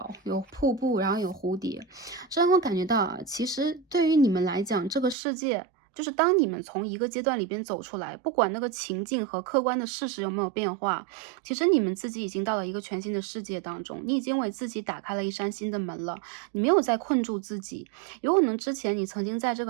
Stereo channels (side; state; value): left; drops out; at 5.2 s